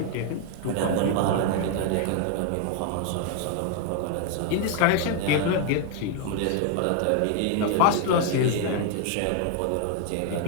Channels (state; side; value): different; both; correlation 0.00